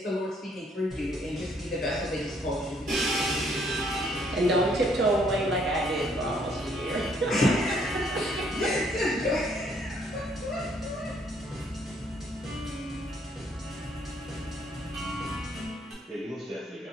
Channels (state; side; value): normal; both; correlation 0.66